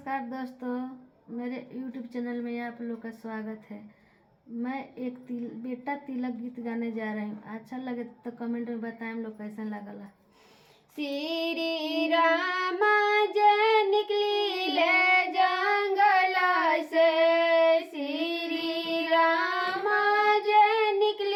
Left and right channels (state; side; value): identical; both; correlation 1.00